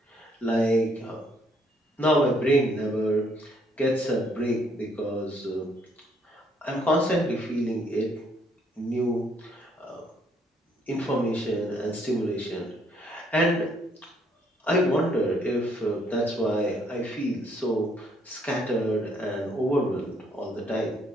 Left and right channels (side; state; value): both; normal; correlation 0.68